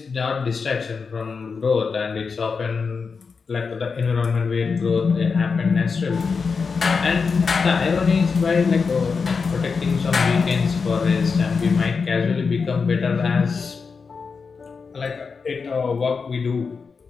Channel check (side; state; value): right; quieter; 5.1 dB